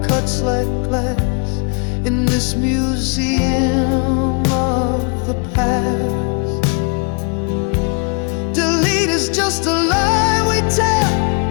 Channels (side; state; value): right; quieter; 37.0 dB